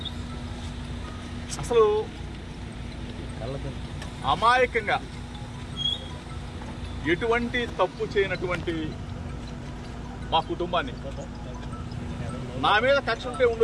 అసలు అమాయకంగా ఎటువంటి తప్పు చేయనటువంటి మా కుటుంబాన్ని నా మీద కక్ష ఉంటే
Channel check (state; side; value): identical; both; correlation 1.00